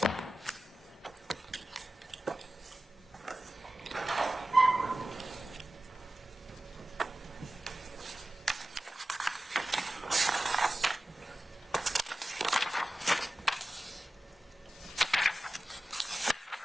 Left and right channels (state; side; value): normal; both; correlation 0.95